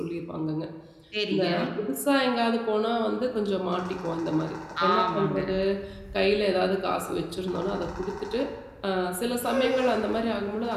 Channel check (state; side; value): identical; both; correlation 1.00